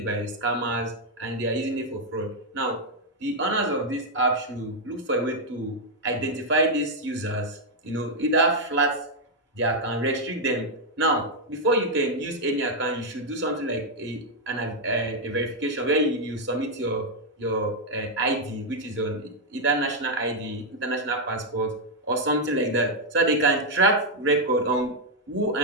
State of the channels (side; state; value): both; normal; correlation -0.01